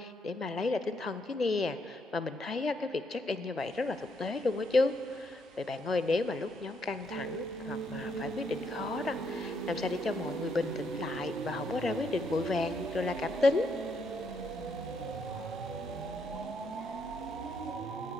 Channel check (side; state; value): both; normal; correlation 0.74